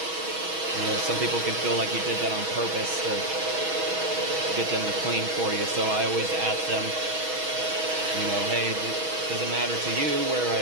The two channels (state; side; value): late; left; 6.3 ms